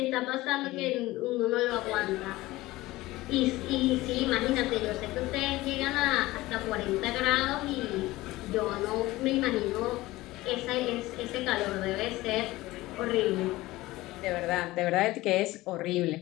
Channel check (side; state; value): right; quieter; 18.5 dB